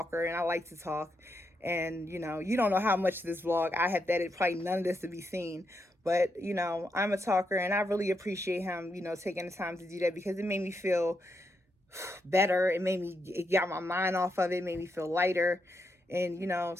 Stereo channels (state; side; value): normal; both; correlation 0.82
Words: and I like to talk. And, you know, you don't know how much of this vlog I have that it probably none of this to be seen. But, you know, I'm a talker, and I really appreciate him, you know, taking the time to do that, because it made me feel better. It got my mind off of it, made me feel lighter. And, you know,